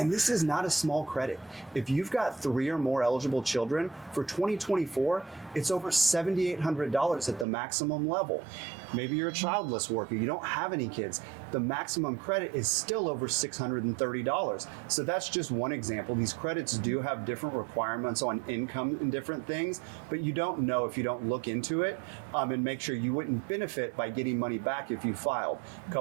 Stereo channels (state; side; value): drops out; left; at 7.5 s